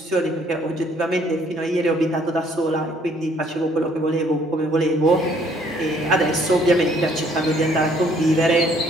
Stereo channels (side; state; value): both; normal; correlation 0.63